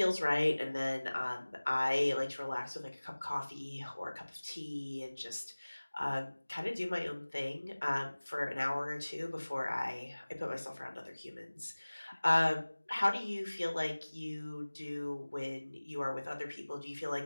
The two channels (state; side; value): inverted; both; correlation -1.00